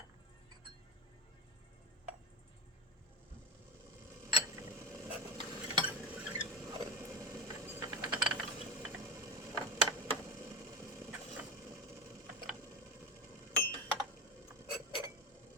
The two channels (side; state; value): both; normal; correlation 0.21